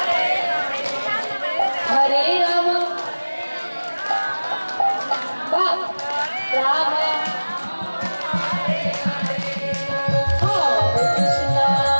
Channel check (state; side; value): inverted; both; correlation -1.00